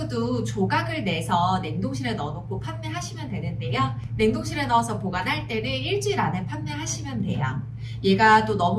조각을 내서 냉동실에 넣어놓고 판매하시면 되는데요. 냉동실에 넣어서 보관할 때는 일주일 안에 판매하시면 돼요. 얘가 또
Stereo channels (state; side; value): identical; both; correlation 1.00